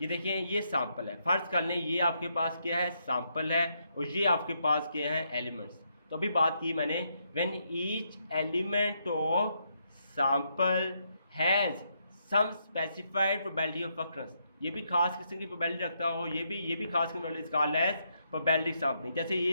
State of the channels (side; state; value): both; inverted; correlation -0.77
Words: ये देखें ये सैंपल है। फ़र्ज़ कर लें ये आपके पास क्या है, सैंपल है, और ये आपके पास क्या है, एलिमेंट्स। तो अभी बात की मैंने, when each element of sample has some specified probability of occurrence, ये भी खास किस्म की प्रोबेबिलिटी रखता हो, ये भी खास किस्म की कॉल्ड एज प्रोबेबिलिटी सैंपलिंग। जैसे